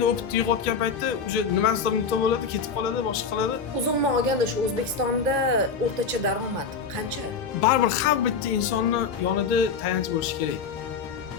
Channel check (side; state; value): right; quieter; 5.6 dB